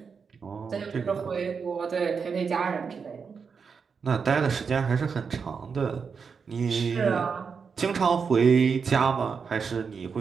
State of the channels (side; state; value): left; quieter; 5.8 dB